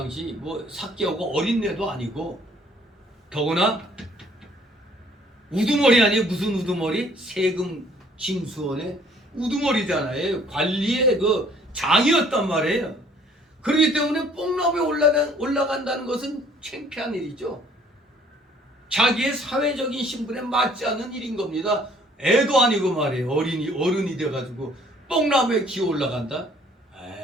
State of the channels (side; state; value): both; normal; correlation 0.59